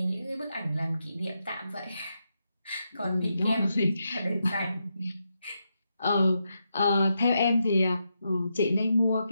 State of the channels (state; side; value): inverted; both; correlation -0.84